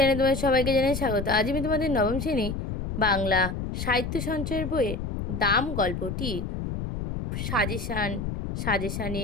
তোমাদের সবাইকে জানাই স্বাগত। আজ আমি তোমাদের নবম শ্রেণী বাংলা সাহিত্য সঞ্চয়ের বইয়ের দাম গল্পটি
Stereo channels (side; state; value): left; noise; rumble, 4 dB below the sound